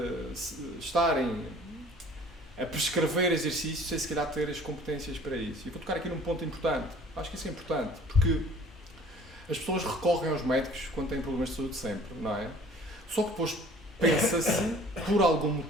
estarem a prescrever exercícios sem se calhar ter as competências para isso. E vou tocar aqui num ponto importante. Acho que isso é importante, porque as pessoas recorrem aos médicos quando têm problemas de saúde sempre, não é? Só que depois pensa-se, por algum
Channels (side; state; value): both; normal; correlation 0.51